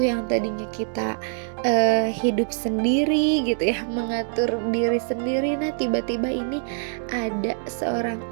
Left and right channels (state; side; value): silent; left; digital silence